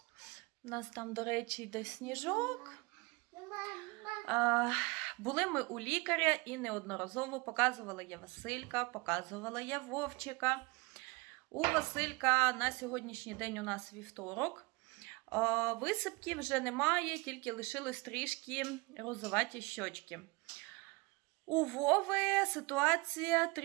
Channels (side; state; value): left; quieter; 26.3 dB